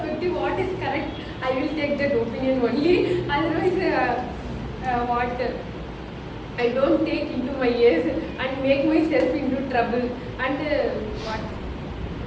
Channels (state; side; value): identical; both; correlation 1.00